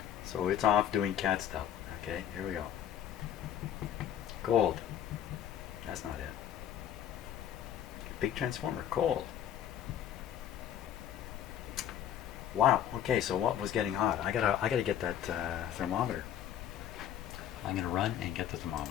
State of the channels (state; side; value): quieter; right; 10.2 dB